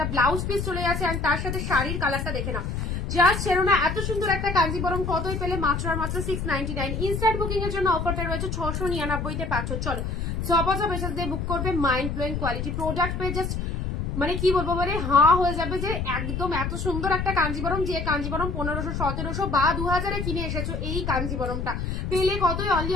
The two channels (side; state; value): left; noise; rumble, 3 dB below the sound